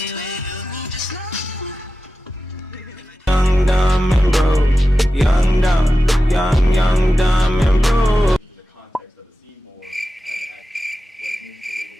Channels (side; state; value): both; normal; correlation 0.93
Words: Young, dumb, and broke. The context of the scene more